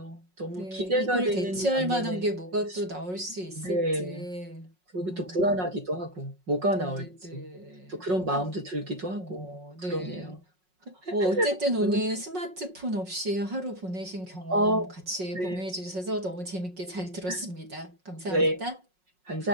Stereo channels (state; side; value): late; left; 5.5 ms